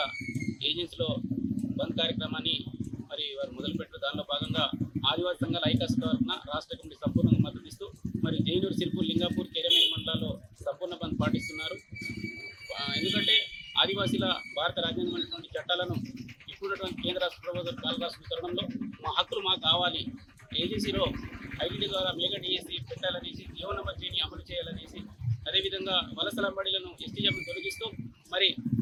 ఏజెన్సీలో బంద్ కార్యక్రమాన్ని మరి వారు మొదలుపెట్టారు. దానిలో భాగంగా ఆదివాసీ సంఘాల ఐకాస తరఫున రాష్ట్ర కమిటీ సంపూర్ణంగా మద్దతిస్తూ మరి జైనూరు, సిర్పూర్, లింగాపూర్, కేరమేని మండలాల్లో సంపూర్ణ బంద్ పాటిస్తున్నారు. ఎందుకంటే ఆదివాసీల భారత రాజ్యాంగమైనటువంటి చట్టాలను ఇప్పుడున్నటువంటి కేంద్ర రాష్ట్ర ప్రభుత్వం కాలరాస్తున్న తరుణంలో మా హక్కులు మాకు కావాలి, ఏజెన్సీలో ఐటీడీ ద్వారా మెగా డిఎస్సీ పెట్టాలనేసి, జీవన మధ్యని అమలు చేయాలనేసి, అదేవిధంగా వలసల బడిలను ఎస్టీఎంను తొలగిస్తూ మరి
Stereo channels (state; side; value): identical; both; correlation 1.00